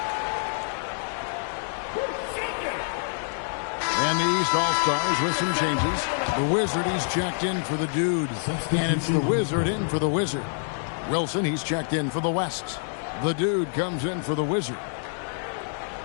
And the East All-Stars with some changes. The Wizard, he's checked in for the Dude. And it's the Wizard in for the Wizard. Wilson, he's checked in for the West. The Dude comes in for the Wizard.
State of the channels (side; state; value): right; silent; 61 dB below the other